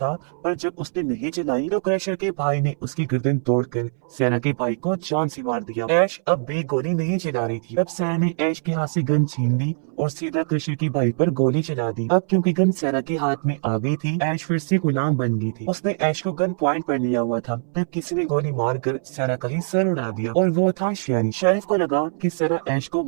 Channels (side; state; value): left; silent; 64 dB below the other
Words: पर जब उसने नहीं चलाई तो क्रशर के भाई ने उसकी गर्दन तोड़कर सैना के भाई को जान से मार दिया। ऐश अब भी गोली नहीं चला रही थी। तब सैना ने ऐश के हाथ से गन छीन ली और सीधा क्रशर की भाई पर गोली चला दी। अब क्योंकि गन सैना के हाथ में आ गई थी, ऐश फिर से गुलाम बन गई थी। उसने ऐश को गन पॉइंट पर लिया हुआ था, तब किसी ने गोली मारकर सैना का ही सर उड़ा दिया और वो था शेरिफ। शेरिफ को लगा कि सैना ऐश को